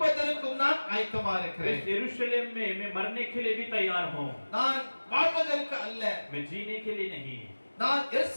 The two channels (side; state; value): both; inverted; correlation -1.00